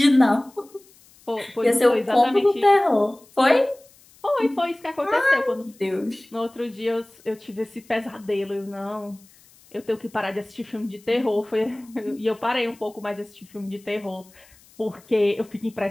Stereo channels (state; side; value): noise; left; hiss, 27 dB below the sound